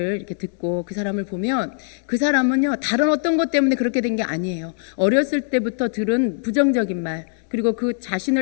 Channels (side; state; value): right; silent; digital silence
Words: 이렇게 듣고 그 사람을 보면 그 사람은요, 다른 어떤 것 때문에 그렇게 된 게 아니에요. 어렸을 때부터 들은 부정적인 말, 그리고 그